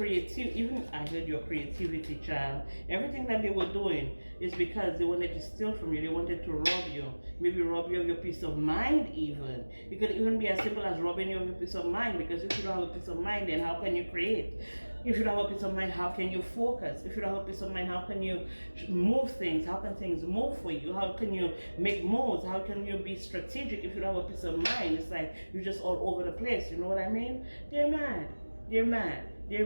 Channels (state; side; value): inverted; both; correlation -1.00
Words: Even I heard your creativity, child. Everything that they were doing is because they wanted to steal from you. They wanted to rob you. Maybe rob you of your peace of mind even. It could even be as simple as robbing you of your peace of mind, because if you don't have a peace of mind, then how can you create? If you don't have a peace of mind, how can you focus? If you don't have a peace of mind, how can you move things? How can things move for you? How can you make moves? How can you be strategic if you don't have a peace of mind? It's like you're just all over the place. You know what I mean? They're mad. They're